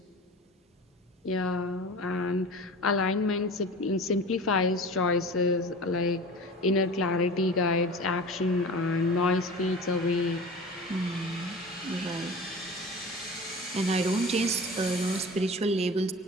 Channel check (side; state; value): both; normal; correlation 0.36